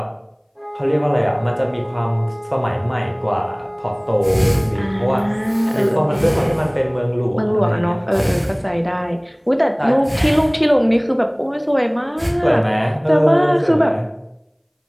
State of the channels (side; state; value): both; identical; correlation 1.00